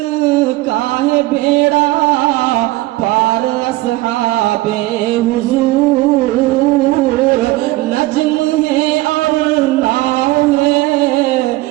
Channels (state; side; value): quieter; left; 18.8 dB